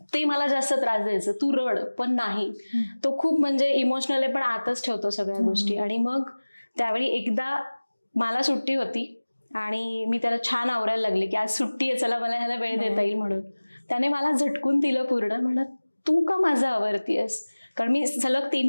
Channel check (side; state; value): both; inverted; correlation -1.00